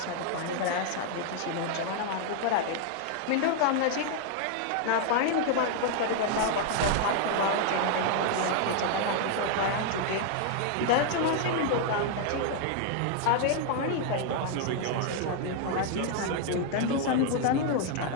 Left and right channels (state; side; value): different; both; correlation 0.00